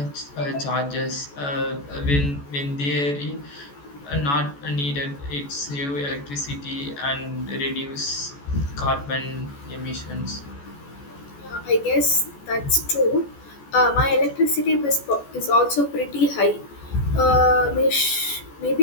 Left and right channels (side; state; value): right; late; 14 ms